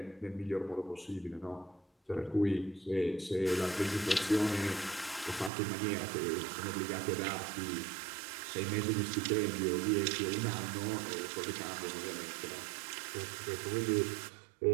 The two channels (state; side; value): drops out; left; at 5.5 s